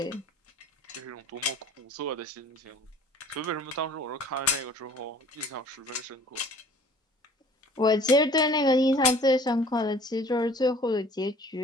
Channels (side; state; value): both; normal; correlation 0.50